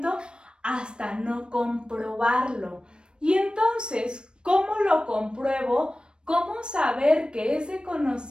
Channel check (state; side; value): late; left; 0.053 ms